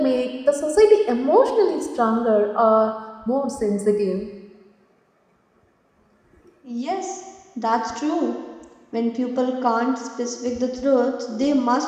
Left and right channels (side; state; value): both; identical; correlation 1.00